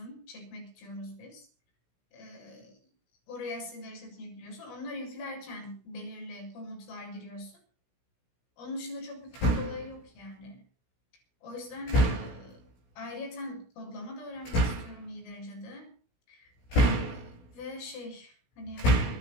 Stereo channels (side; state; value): right; late; 16 ms